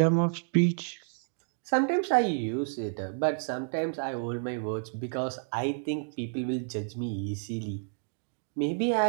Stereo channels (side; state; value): left; silent; 58 dB below the other